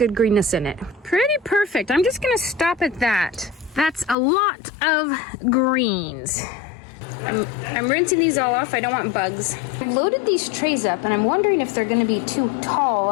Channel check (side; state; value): right; drops out; at 4.2 s